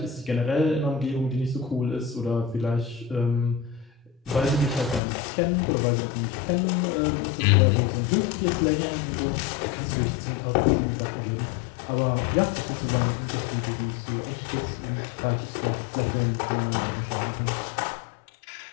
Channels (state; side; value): drops out; right; at 5.0 s